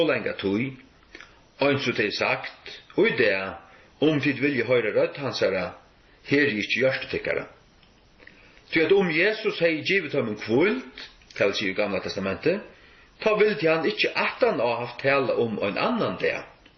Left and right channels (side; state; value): both; identical; correlation 1.00